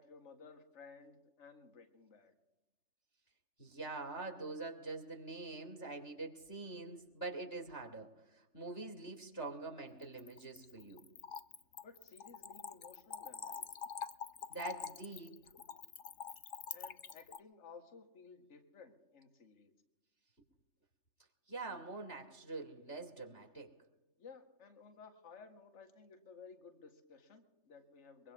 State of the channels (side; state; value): right; late; 3.3 ms